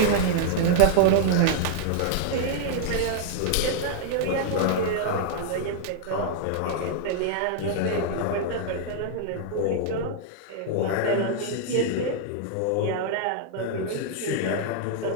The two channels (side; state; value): both; different; correlation -0.01